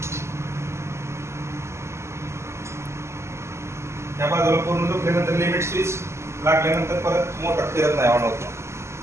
त्या बाजूला पूर्ण झोपल्यानंतर लिमिट स्विच लागल्यानंतर परत मोटर फिरत नाही, ऑन होत.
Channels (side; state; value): left; late; 0.13 ms